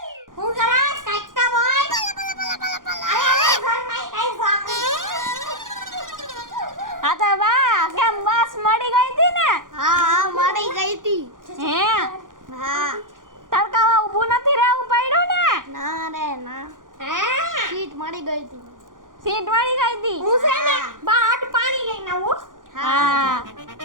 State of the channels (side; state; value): left; late; 0.89 ms